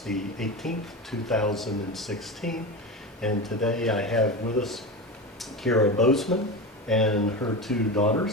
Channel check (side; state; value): both; normal; correlation 0.23